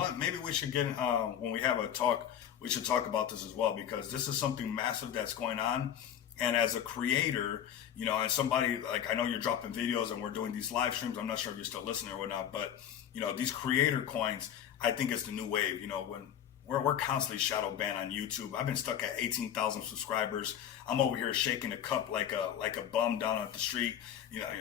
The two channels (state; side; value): quieter; right; 9.7 dB